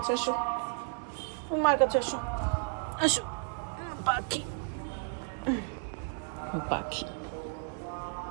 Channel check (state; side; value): silent; left; 56 dB below the other